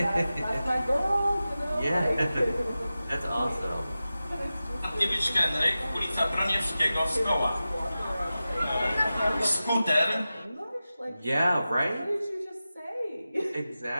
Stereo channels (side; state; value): both; inverted; correlation -0.94